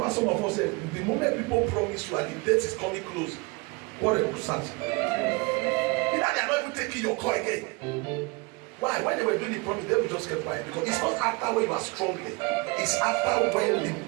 some of us say the moment people promise you and the date is coming close, quarrel will start. Either they are not even taking your call again. Why? When they were doing the promise, they will just keep quiet because it's not after when you are strongly, it's after when the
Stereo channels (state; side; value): quieter; left; 27.0 dB